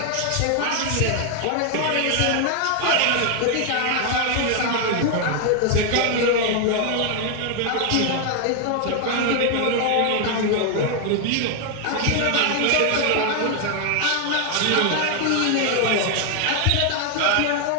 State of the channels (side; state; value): both; different; correlation 0.00